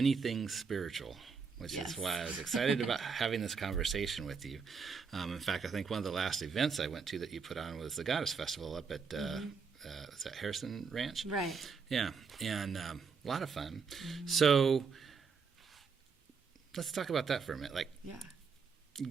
things spiritual, which is why I was excited about having this conversation with you. In fact, I think one of the last events I went to that you put on was the Goddess Festival up at is that Harrison Ranch? Right. Yeah, and a lot of fun. So let's talk about that for a minute.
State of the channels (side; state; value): left; quieter; 5.5 dB